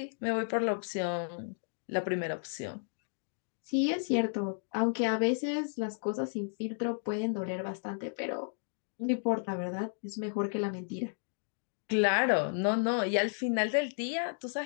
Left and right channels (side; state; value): right; silent; digital silence